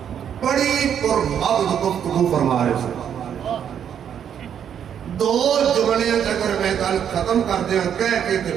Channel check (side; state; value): left; quieter; 8.8 dB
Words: بڑی پرمغز گفتگو فرما رہے تھے. دو جملے اگر میں گل ختم کر دیا کہہ کے تے